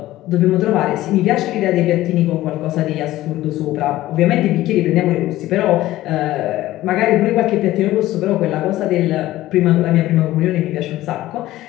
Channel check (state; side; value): quieter; right; 15.7 dB